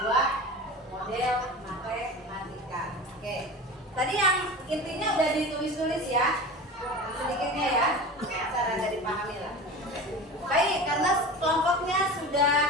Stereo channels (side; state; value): both; normal; correlation 0.33